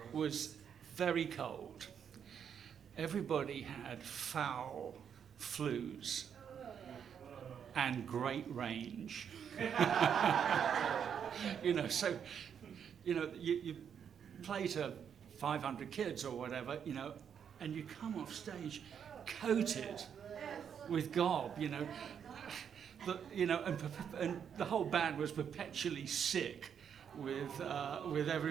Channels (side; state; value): left; quieter; 7.9 dB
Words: was very cold. Everybody had foul flus and great range. You know, so, you know, you play to 500 kids or whatever, you know, and you come off stage coated with gob, you know, and the whole band was perpetually sick with